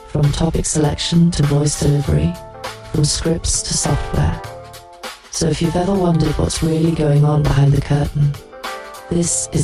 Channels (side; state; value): both; identical; correlation 1.00